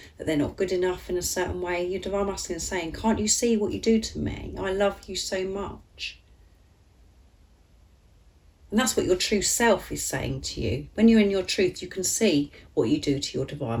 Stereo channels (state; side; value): identical; both; correlation 1.00